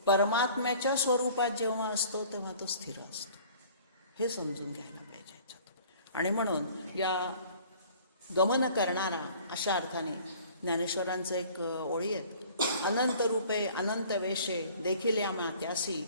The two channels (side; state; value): both; inverted; correlation -0.50